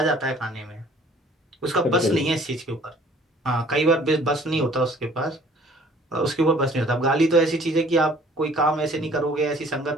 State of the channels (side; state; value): both; normal; correlation 0.55